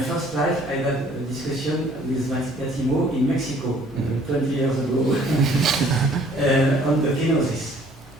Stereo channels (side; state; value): both; normal; correlation 0.58